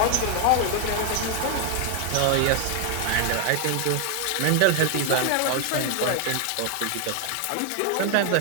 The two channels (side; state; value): both; different; correlation 0.00